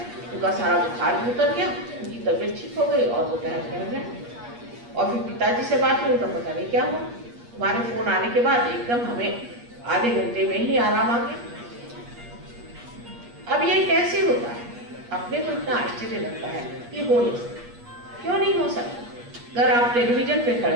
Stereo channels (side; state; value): left; late; 8.5 ms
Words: उनका सारा बुखार भी उतर गया, उनकी तबीयत ठीक हो गई और वो टहल कर गए। और फिर पिताजी से बात हुई, उनका पता नहीं क्या हुआ। तुम्हारे फोन आने के बाद एकदम हमें आधे घंटे में ही आराम आ गया। अब ये कैसे होता है? अपने को इतना आश्चर्य लगता है कि हो नहीं सकता। क्यों नहीं हो सकता? अगर आप टेलीविजन पे खड़े